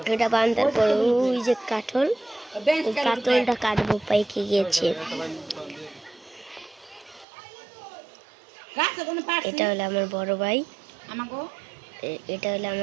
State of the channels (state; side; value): drops out; left; at 7.2 s